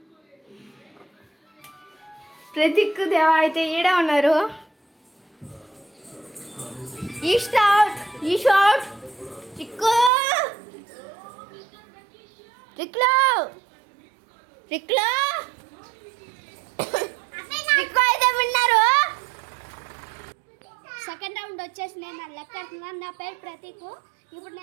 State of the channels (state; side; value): drops out; left; at 10.1 s